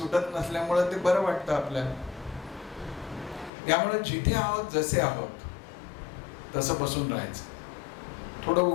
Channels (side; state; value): right; drops out; at 3.5 s